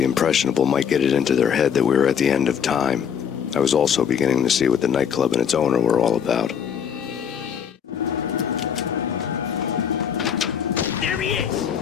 impressionable might get it into their head that we were at the end of time. I was also beginning to see what the nightclub and its owner were all about. There he is!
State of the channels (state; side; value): quieter; right; 7.8 dB